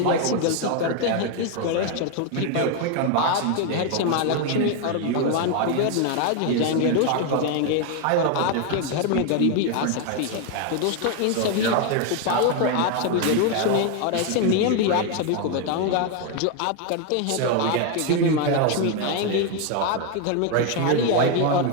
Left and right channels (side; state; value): both; different; correlation 0.01